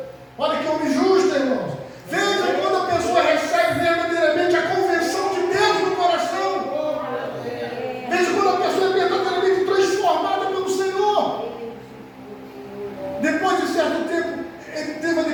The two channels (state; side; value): identical; both; correlation 1.00